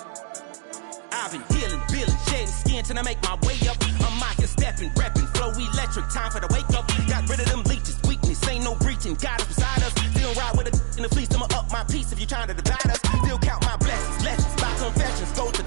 I've been healing, feeling, shedding skin till I make my way up. I'm out here stepping, repping, flow electric, time for the wake up. Got rid of them leeches, weakness, ain't no breaching. God is beside us, still ride with a in the fleece. I'ma up my piece if you're trying to divide us. Still count my blessings, lessons, my confessions, go to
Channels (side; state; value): left; silent; digital silence